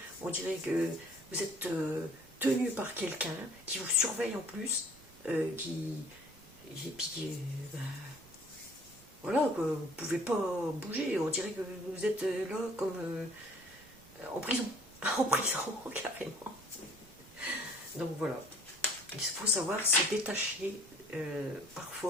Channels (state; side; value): noise; right; rumble, 24 dB below the sound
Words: On dirait que vous êtes tenu par quelqu'un qui vous surveille en plus, voilà, que vous ne pouvez pas bouger. On dirait que vous êtes là comme en prison. En prison, carrément. Donc voilà. Il faut savoir se détacher